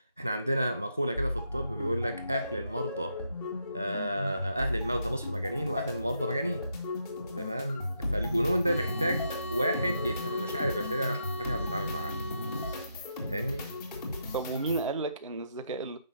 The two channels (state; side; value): inverted; both; correlation -0.79